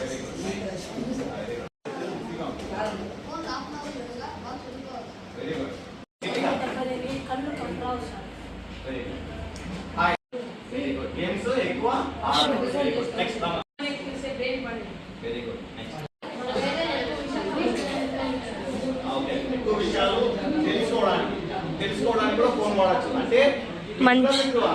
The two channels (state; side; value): identical; both; correlation 1.00